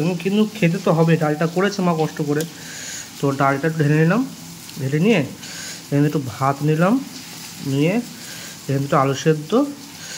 কিন্তু খেতে তো হবে, ডালটা করেছে মা কষ্ট করে। তো ডালটা একটু ঢেলে নিলাম, ঢেলে নিয়ে এখানে একটু ভাত নিলাম, নিয়ে এখানে একটু আলু সেদ্ধ,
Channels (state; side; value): identical; both; correlation 1.00